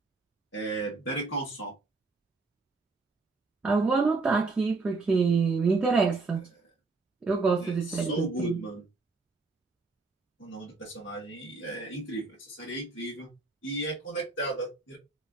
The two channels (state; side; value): quieter; left; 3.9 dB